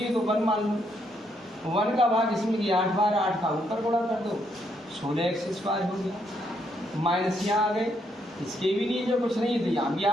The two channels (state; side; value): normal; both; correlation 0.75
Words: है तो 1 मान लो, 1 का भाग इसमें किया 8 बार, 8 का ऊपर गुणा कर दो, 16x² हो गया। माइनस यहाँ आ गए, इसके भी नीचे कुछ नहीं है तो यहाँ भी